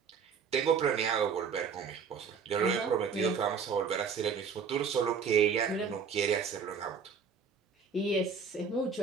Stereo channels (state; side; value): quieter; left; 6.0 dB